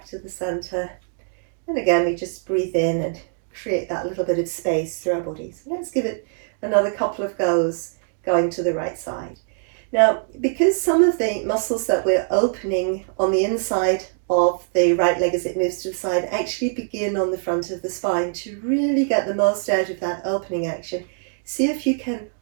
to the center. And again, we just breathe in and create that little bit of space through our bodies. Let's give it another couple of goes going to the right side. Now, because some of the muscles that we're opening on the inside of the right leg as it moves to the side actually begin on the front of the spine, to really get the most out of that opening action, see if you can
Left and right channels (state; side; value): silent; left; digital silence